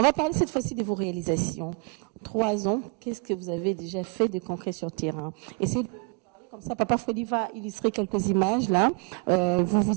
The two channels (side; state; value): left; quieter; 35.7 dB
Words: va parler cette fois-ci de vos réalisations. 3 ans, qu'est-ce que vous avez déjà fait de concret sur terrain? Essayez de parler comme ça. Papa Freddy va illustrer quelques images là.